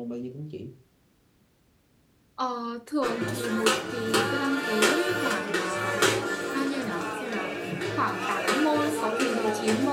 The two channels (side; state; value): both; identical; correlation 1.00